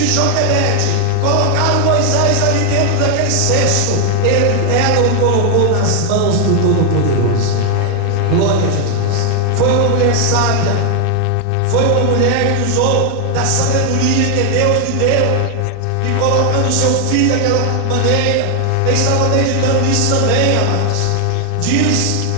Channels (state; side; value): different; both; correlation 0.00